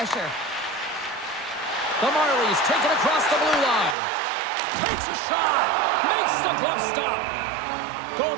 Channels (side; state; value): left; drops out; at 4.0 s